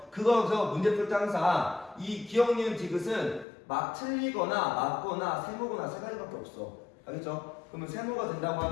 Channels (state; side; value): drops out; right; at 3.5 s